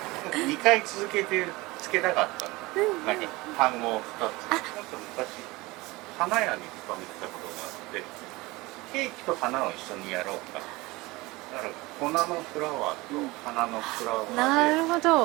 2回続けてつけたかったの、なんか単語を2つ。なんか昔花屋に勤めてたことがあって、ケーキと花を一緒にやろうか、だから粉のフラワーと花のフラワーで、なるほ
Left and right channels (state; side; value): quieter; left; 22.0 dB